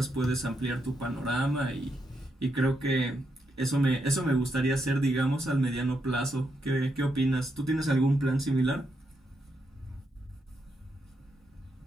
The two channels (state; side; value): normal; both; correlation 0.81